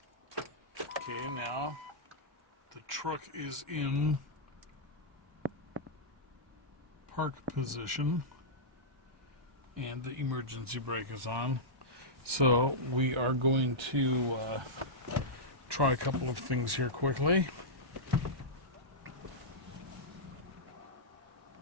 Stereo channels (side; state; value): left; late; 1.2 ms